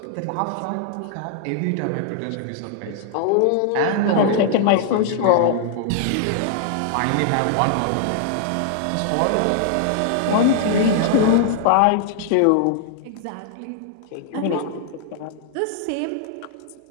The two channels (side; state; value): both; different; correlation -0.01